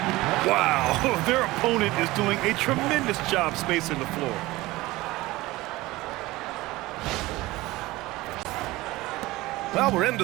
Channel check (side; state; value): left; quieter; 19.3 dB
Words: Wow, their opponent is doing a tremendous job spacing the floor. Well, we're into